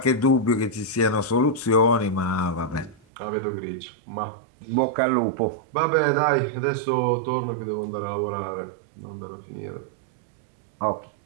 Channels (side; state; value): left; drops out; at 3.0 s